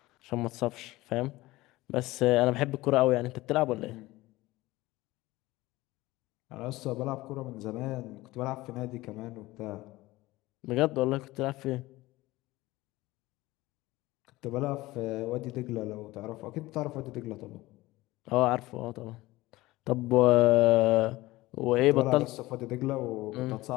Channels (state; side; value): quieter; right; 19.0 dB